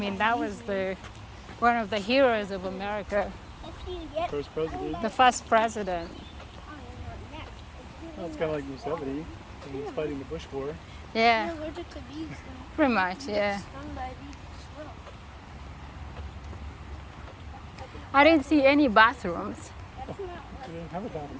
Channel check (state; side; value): identical; both; correlation 1.00